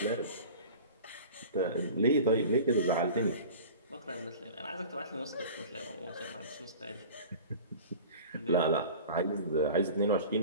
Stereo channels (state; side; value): inverted; both; correlation -0.39